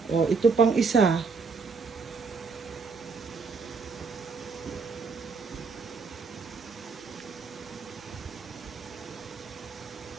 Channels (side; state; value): left; quieter; 4.8 dB